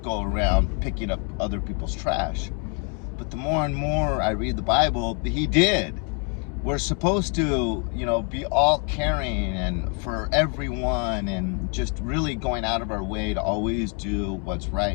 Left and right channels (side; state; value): right; quieter; 37.6 dB